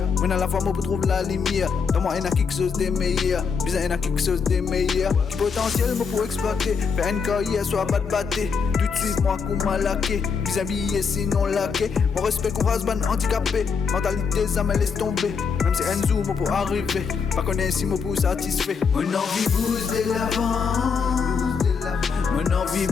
Moi à la fois moi pour trouver la lumière. Dans moi y'en a quelque chose de meilleur. Bizarre y'en a quelque chose de meilleur. Qui potentiel moi pour exploiter. Faire une carrière soit pas de batté. Tout de suite moi coup malaqué. Bizarre habillé sinon laqué. Mon respect qu'on rase ban handicapé. Mentalité ça me laisse tomber. Même si un zoom pour arriver. Pas connaître si moi pour satisfait. Mon envie booste de l'avant. Mon envie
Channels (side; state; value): right; quieter; 5.8 dB